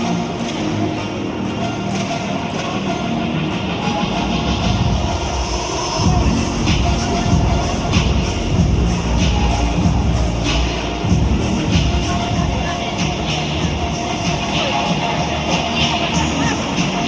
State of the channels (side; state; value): both; identical; correlation 1.00